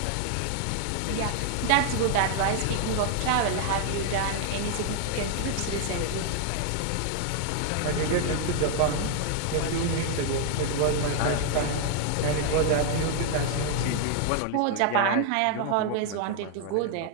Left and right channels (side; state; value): both; different; correlation 0.00